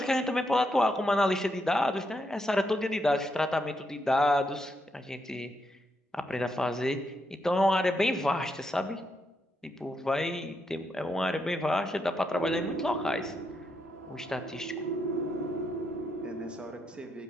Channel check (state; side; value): normal; both; correlation 0.80